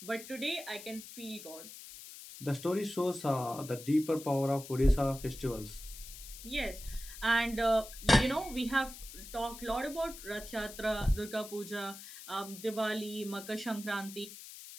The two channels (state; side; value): noise; left; hiss, 14 dB below the sound